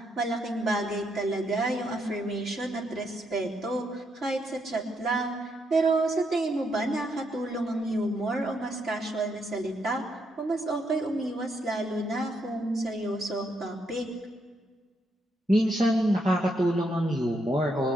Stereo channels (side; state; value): both; normal; correlation 0.77